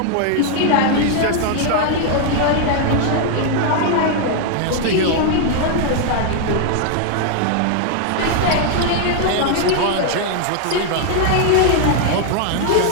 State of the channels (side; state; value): both; different; correlation 0.00